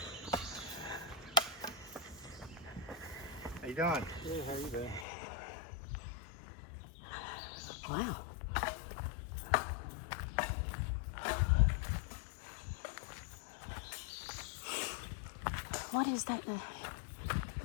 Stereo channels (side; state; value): right; drops out; at 5.1 s